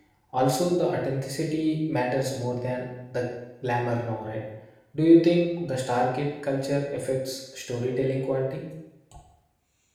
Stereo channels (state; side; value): identical; both; correlation 1.00